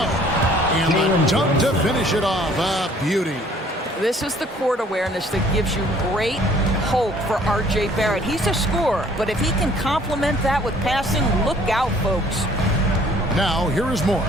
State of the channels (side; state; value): both; normal; correlation 0.57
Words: And the dunk to finish it off. A beauty. This is the court awareness that gives you great hope for R.J. Barrett. He's a scorer, but if he can complement that with passing, look out, folks. Now, here is